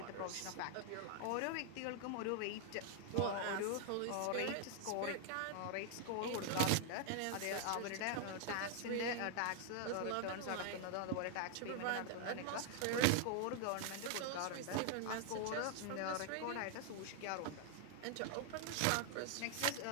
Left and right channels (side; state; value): both; different; correlation 0.00